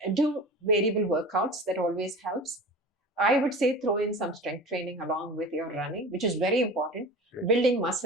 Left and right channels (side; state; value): both; normal; correlation 0.35